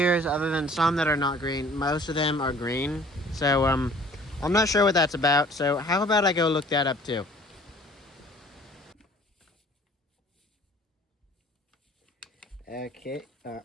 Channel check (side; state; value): both; normal; correlation 0.51